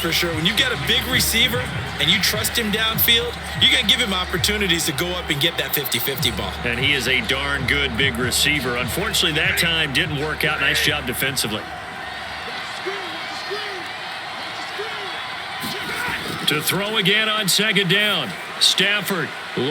sure, when you got a big receiver and you trust him downfield, you're going to give him opportunities to go up and get that 50-50 ball. And he is a darn good big receiver. Unfortunately, that time didn't work out. Nice job defensively. To throw again on 2nd down. Stafford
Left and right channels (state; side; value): identical; both; correlation 1.00